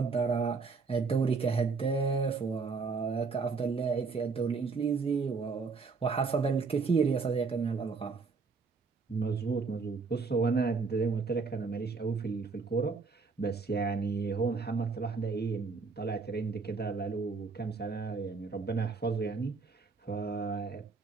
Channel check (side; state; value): left; quieter; 4.7 dB